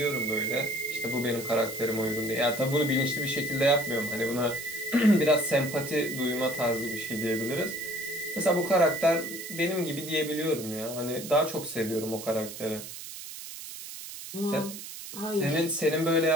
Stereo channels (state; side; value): noise; right; hiss, 11 dB below the sound